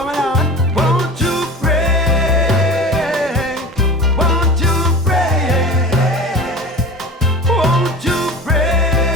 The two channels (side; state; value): both; normal; correlation 0.35